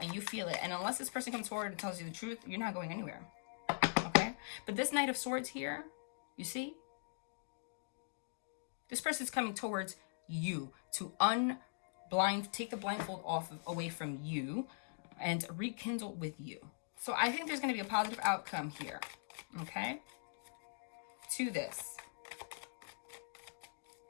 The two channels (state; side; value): silent; right; digital silence